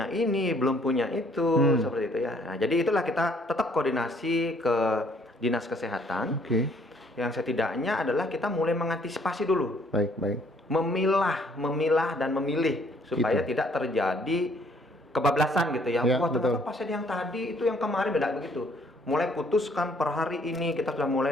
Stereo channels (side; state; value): both; normal; correlation 0.63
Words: ini, belum punya itu, seperti itu ya. Nah, jadi itulah kita tetap koordinasi ke dinas kesehatan. Yang setidaknya adalah kita mulai mengantisipasi dulu. Memilah dan memilih supaya tidak terjadi kebablasan gitu ya. Wah ternyata pasien yang tadi itu yang kemarin beda begitu. Mulai putuskan per hari ini kita sudah